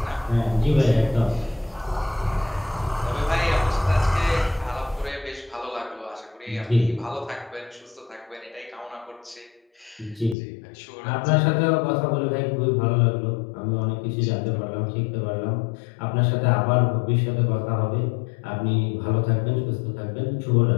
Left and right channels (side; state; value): right; drops out; at 10.4 s